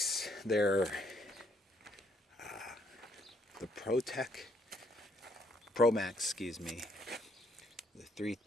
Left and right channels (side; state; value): both; normal; correlation 0.70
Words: they're the ProMax, excuse me, the